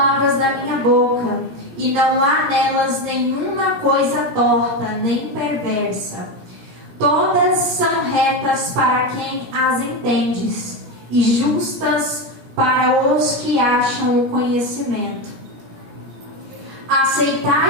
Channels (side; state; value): left; late; 18 ms